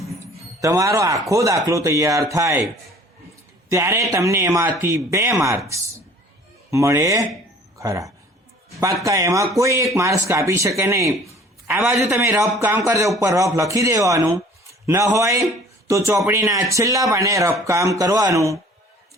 તમારો આખો દાખલો તૈયાર થાય ત્યારે તમને એમાંથી 2 માર્ક્સ મળે ખરા. પાક્કા એમાં કોઈ એક માર્ક્સ કાપી શકે નહીં. આ બાજુ તમે રફ કામ કરજો, ઉપર રફ લખી દેવાનું. ન હોય તો ચોપડીના છેલ્લા પાને રફ કામ કરવાનું.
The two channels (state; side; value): normal; both; correlation 0.51